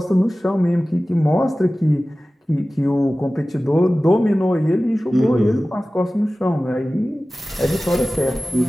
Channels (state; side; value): normal; both; correlation 0.97